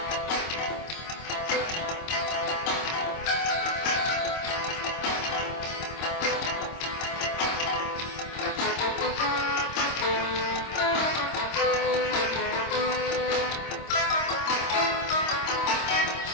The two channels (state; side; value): late; right; 26 ms